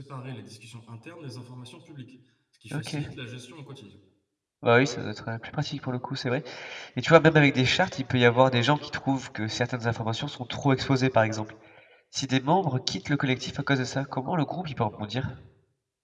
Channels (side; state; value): both; identical; correlation 1.00